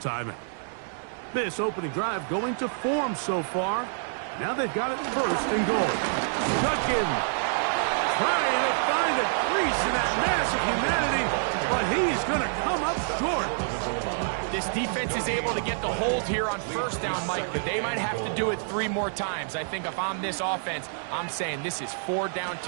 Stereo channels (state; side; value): silent; left; 60 dB below the other